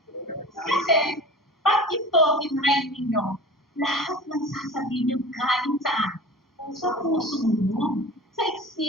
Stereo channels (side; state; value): both; normal; correlation 0.37